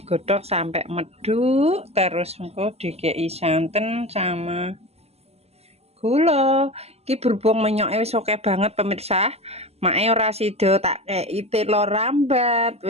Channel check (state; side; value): late; left; 0.30 ms